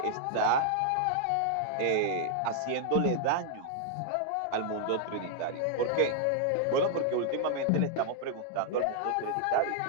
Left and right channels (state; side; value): different; both; correlation -0.01